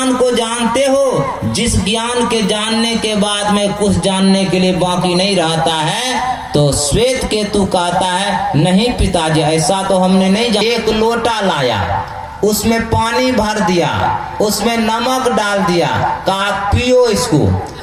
को जानते हो जिस ज्ञान के जानने के बाद में कुछ जानने के लिए बाकी नहीं रहता है? तो श्वेत केतु कहता है नहीं पिताजी, ऐसा तो हमने नहीं जाना। एक लोटा लाया, उसमें पानी भर दिया, उसमें नमक डाल दिया, कहा पियो इसको।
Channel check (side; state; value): both; identical; correlation 1.00